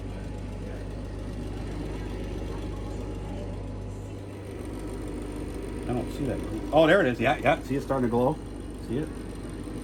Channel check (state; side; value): identical; both; correlation 1.00